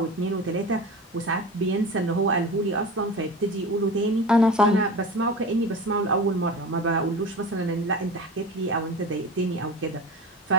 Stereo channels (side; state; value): both; normal; correlation 0.32